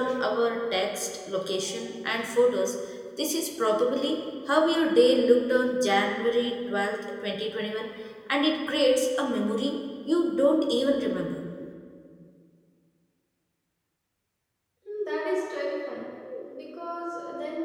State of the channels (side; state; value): both; identical; correlation 1.00